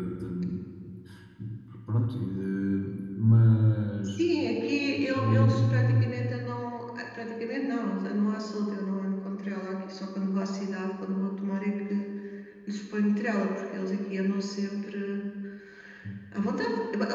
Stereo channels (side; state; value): both; identical; correlation 1.00